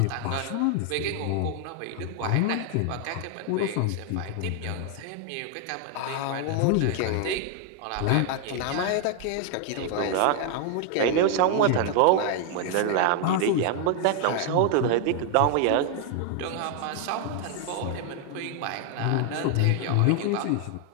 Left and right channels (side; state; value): both; different; correlation 0.00